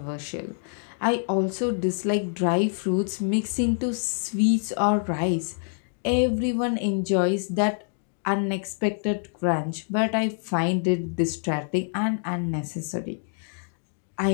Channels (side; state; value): right; silent; 61 dB below the other